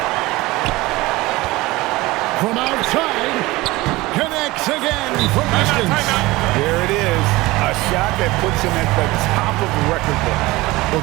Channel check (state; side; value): quieter; left; 20.3 dB